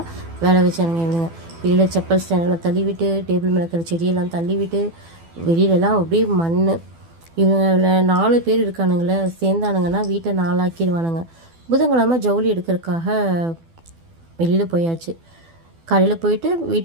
வேலை வச்சானுங்க இவங்க. வெளியில் செப்பல் ஸ்டாண்டெல்லாம் தள்ளிவிட்டு, டேபிள் மேலே இருக்கிற செடியெல்லாம் தள்ளிவிட்டு, வெளியிலலாம் அப்படியே மண். இவங்கள 4 பேர் இருக்கானுங்களே, சேர்ந்தானுங்கன்னா வீட்டை 4 ஆக்கிடுவானுங்க. புதன்கிழமை ஜவுளி எடுக்கிறதுக்காக வெளியில் போயாச்சு. காலையில் போயிட்டு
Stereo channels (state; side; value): late; left; 12 ms